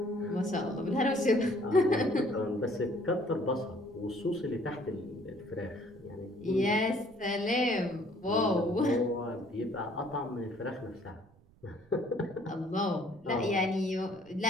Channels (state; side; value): noise; right; rumble, 28 dB below the sound